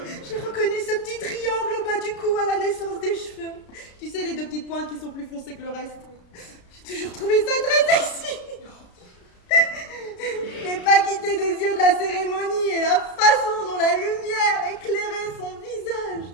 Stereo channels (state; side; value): late; right; 33 ms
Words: J'ai reconnu ce petit triangle au bas du cou à la naissance des cheveux. Tu sais, les deux petites pointes qui sont plus foncées que le reste. J'ai toujours trouvé ça très sexy. Je n'ai pas quitté des yeux de la cérémonie et la façon dont la lumière éclairait son visage.